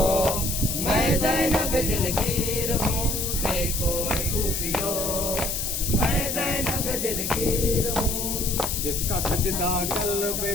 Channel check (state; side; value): noise; left; hiss, 2 dB below the sound